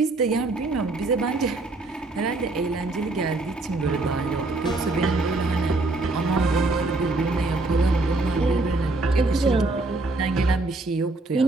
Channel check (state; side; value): quieter; left; 3.1 dB